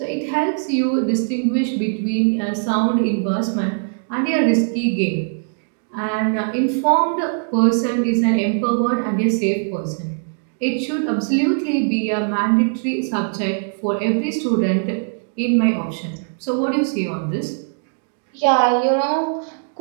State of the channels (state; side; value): silent; left; digital silence